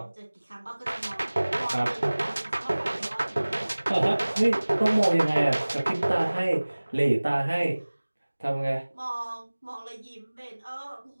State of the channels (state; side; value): inverted; both; correlation -1.00